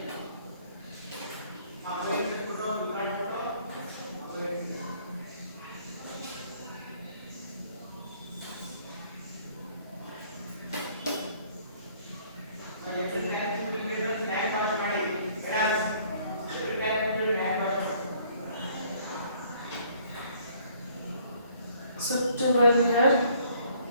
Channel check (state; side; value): inverted; both; correlation -0.60